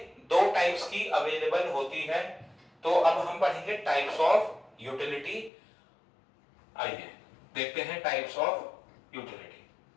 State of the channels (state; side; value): drops out; right; at 5.5 s